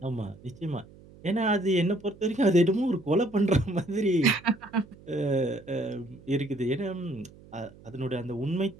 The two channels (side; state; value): right; noise; hum, 22 dB below the sound